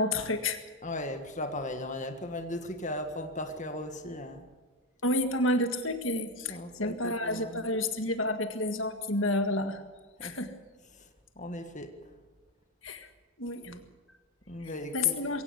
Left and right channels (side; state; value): both; normal; correlation 0.10